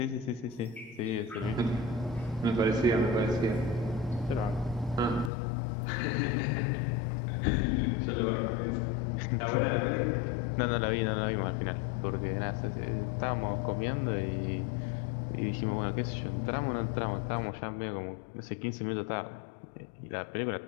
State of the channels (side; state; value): right; drops out; at 5.3 s